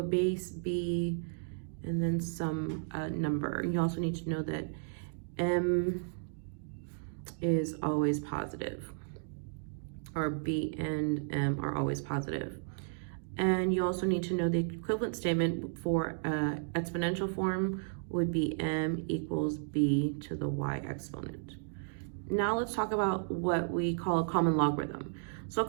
base b and then some number. You also need to know that m is always positive, or b and m are always positive. And you also need to know the equivalent statement for exponential form would be m equals b to the y exponent. Now let's talk about what we call a common logarithm. So a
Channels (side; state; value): left; silent; digital silence